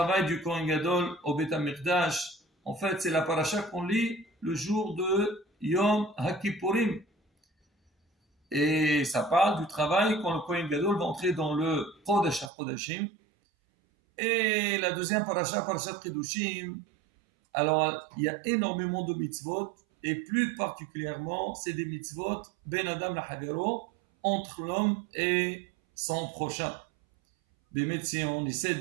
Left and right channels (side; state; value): left; drops out; at 12.5 s